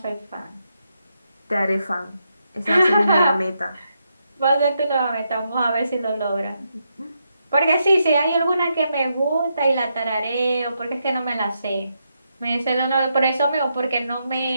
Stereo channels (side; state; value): both; inverted; correlation -0.81